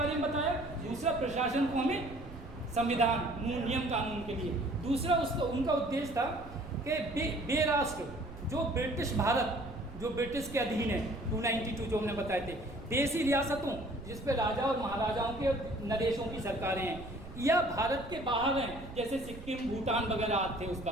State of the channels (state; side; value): noise; right; rumble, 15 dB below the sound